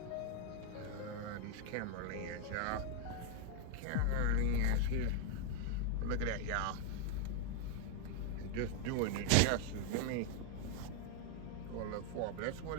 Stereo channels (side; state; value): both; different; correlation 0.01